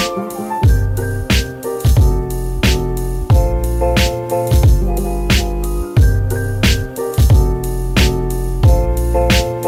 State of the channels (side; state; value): both; identical; correlation 1.00